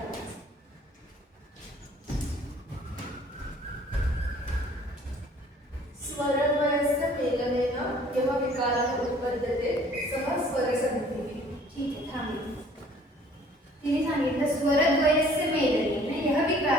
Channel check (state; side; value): normal; both; correlation 0.55